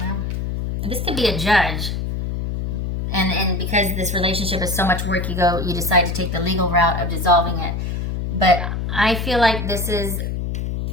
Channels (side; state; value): left; noise; hum, 3 dB below the sound